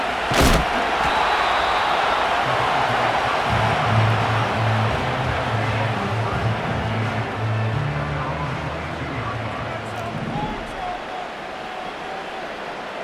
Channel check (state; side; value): identical; both; correlation 1.00